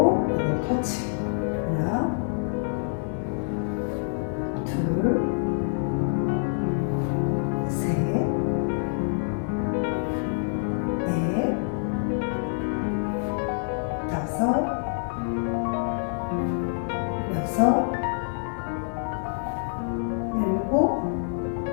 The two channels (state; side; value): silent; right; digital silence